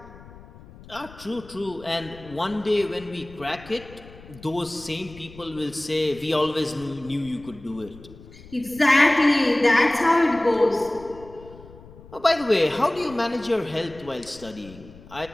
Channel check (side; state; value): left; noise; rumble, 20 dB below the sound